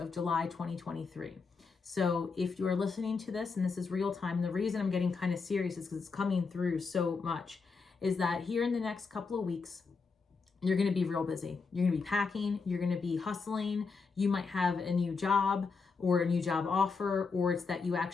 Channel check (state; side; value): quieter; right; 4.8 dB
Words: July 2023. So if you are listening to this and this is real time, the reason I'm getting kind of serious is because it's coming through so much, is that here in the next couple of weeks, you're going to be real busy. You're going to be packing. You're going to be hustling. You might have a new job or a new job offer, or it's that you